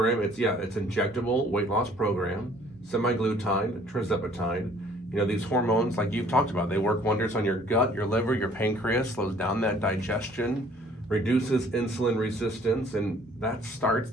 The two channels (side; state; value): both; normal; correlation 0.57